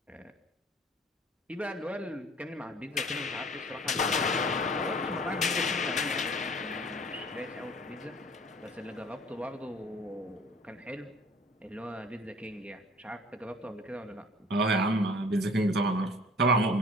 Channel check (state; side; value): normal; both; correlation 0.49